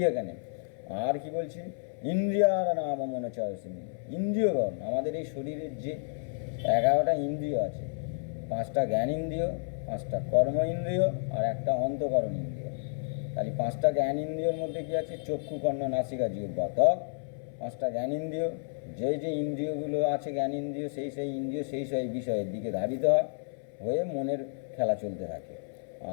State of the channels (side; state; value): right; silent; 57 dB below the other